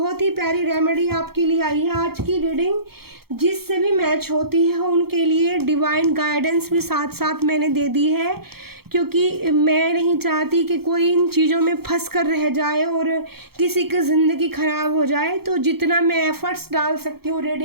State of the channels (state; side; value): late; left; 0.95 ms